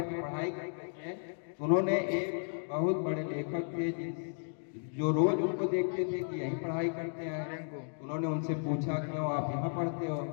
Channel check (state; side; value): silent; right; digital silence